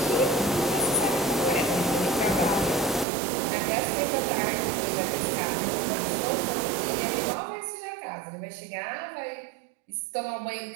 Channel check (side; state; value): left; drops out; at 3.1 s